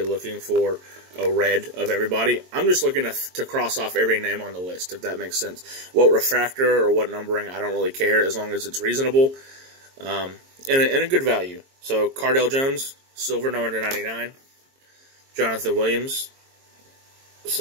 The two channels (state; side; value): late; left; 22 ms